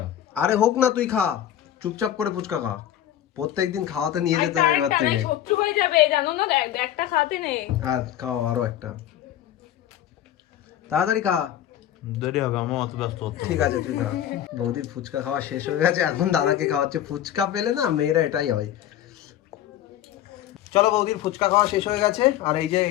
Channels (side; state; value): right; quieter; 11.6 dB